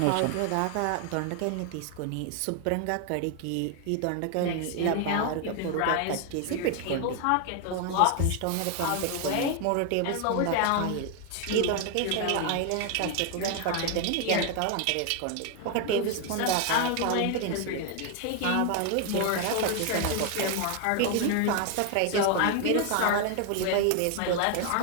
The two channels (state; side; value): different; both; correlation 0.01